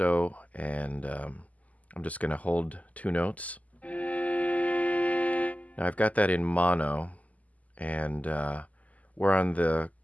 and I'm just going to hold two notes. Now I've got that in mono, and we're on the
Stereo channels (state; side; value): late; right; 0.074 ms